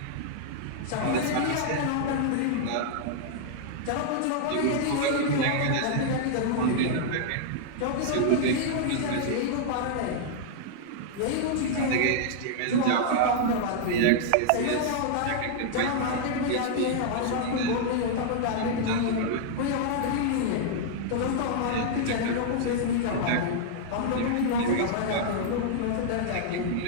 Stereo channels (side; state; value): both; different; correlation -0.01